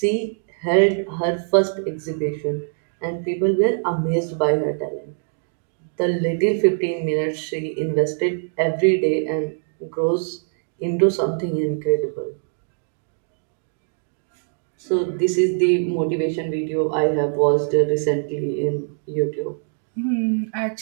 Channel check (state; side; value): silent; left; digital silence